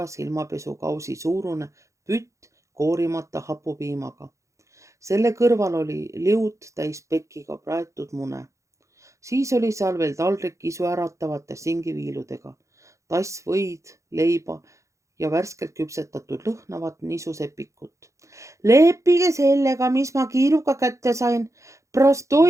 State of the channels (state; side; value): late; left; 0.15 ms